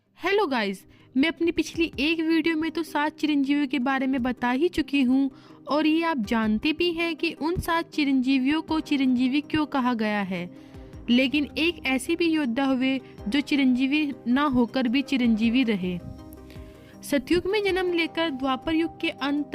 Hello guys, मैं अपनी पिछली एक वीडियो में तो 7 चिरंजीवियों के बारे में बता ही चुकी हूँ और ये आप जानते भी हैं कि उन 7 चिरंजीवियों को चिरंजीवी क्यों कहा गया है। लेकिन एक ऐसे भी योद्धा हुए जो चिरंजीवी ना होकर भी चिरंजीवी रहे। सतयुग में जन्म लेकर द्वापर युग के अंत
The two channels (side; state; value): both; identical; correlation 1.00